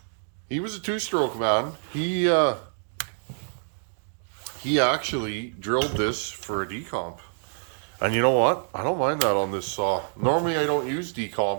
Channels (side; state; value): left; silent; digital silence